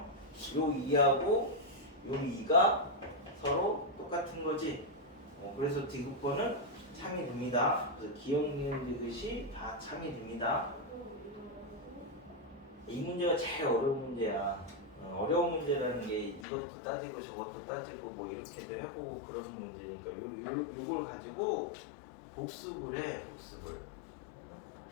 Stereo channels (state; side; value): drops out; right; at 16.4 s